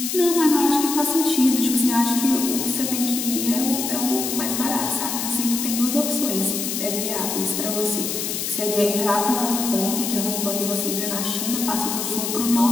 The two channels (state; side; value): noise; left; hiss, 3 dB below the sound